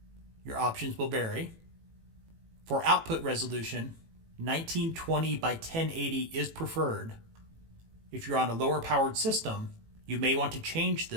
Your options will vary. For output resolution, 1920 by 1080 is preferred. If you're on a lower powered system, you may want to change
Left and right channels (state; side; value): late; left; 18 ms